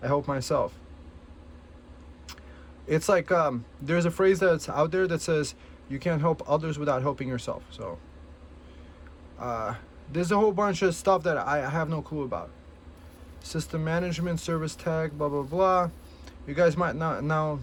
I help myself. It's like there's a phrase that's out there that says you can't help others without helping yourself. So there's a whole bunch of stuff that I have no clue about. System management, service tag, blah blah blah. You guys might not now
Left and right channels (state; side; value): identical; both; correlation 1.00